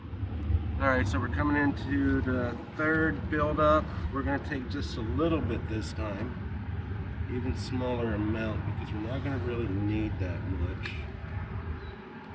Alright, so we're coming into the third build-up. We're going to take just a little bit this time, even smaller amount, because we're not going to really need that much.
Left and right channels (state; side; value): identical; both; correlation 1.00